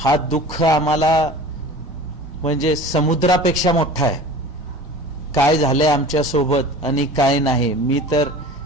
दुःख आम्हाला म्हणजे समुद्रापेक्षा मोठा आहे. काय झालंय आमच्या सोबत आणि काय नाही. मी तर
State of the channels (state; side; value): normal; both; correlation 0.40